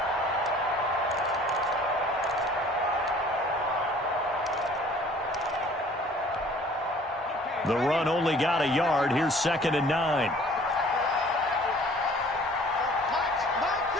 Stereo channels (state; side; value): normal; both; correlation 0.52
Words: The run only got a yard. Here's 2nd and 9.